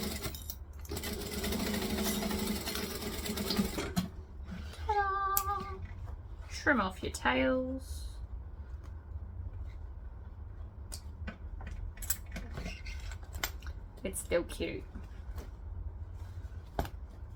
Trim off your tails. It's still cute.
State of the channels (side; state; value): both; identical; correlation 1.00